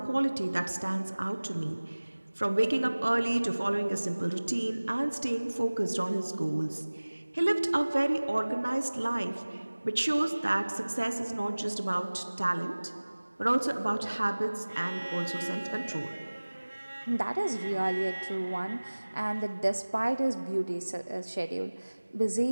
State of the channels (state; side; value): inverted; both; correlation -1.00